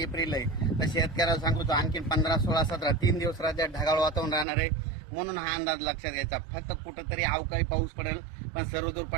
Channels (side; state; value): left; drops out; at 4.5 s